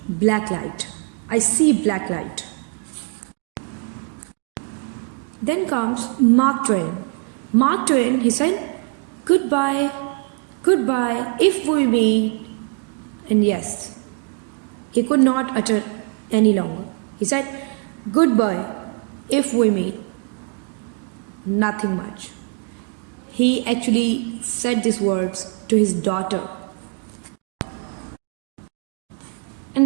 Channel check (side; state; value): left; quieter; 34.4 dB